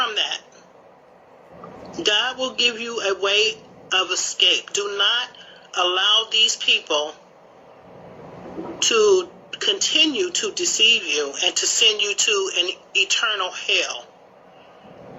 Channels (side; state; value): both; identical; correlation 1.00